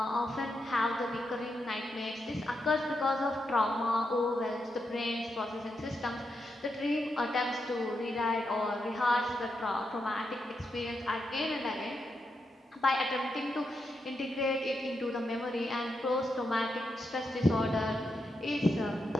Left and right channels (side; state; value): both; normal; correlation 0.84